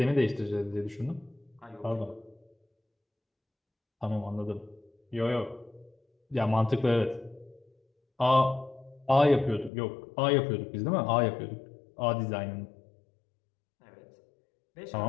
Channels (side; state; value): right; drops out; at 9.7 s